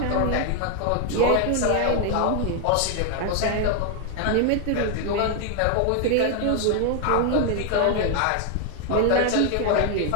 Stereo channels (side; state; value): both; different; correlation 0.00